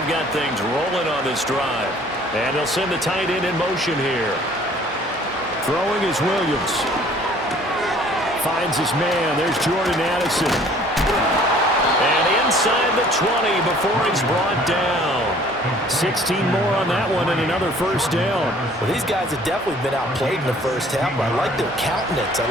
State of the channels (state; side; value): normal; both; correlation 0.55